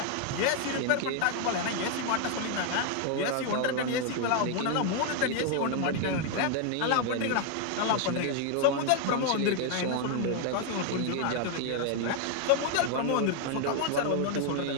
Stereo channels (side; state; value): both; different; correlation 0.00